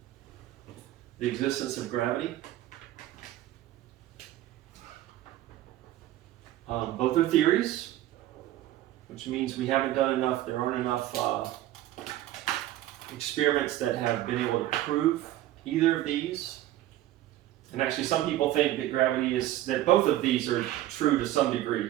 the existence of gravity. Both are theories, which means we haven't done enough, there aren't enough experiments that have been able to prove either of these. And actually some people think that gravity is, that both of these are true to some degree,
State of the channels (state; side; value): quieter; left; 14.3 dB